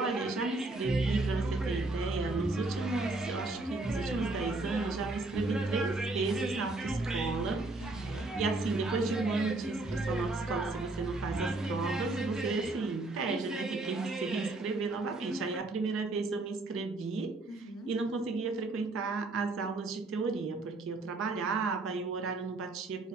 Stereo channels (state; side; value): quieter; left; 3.1 dB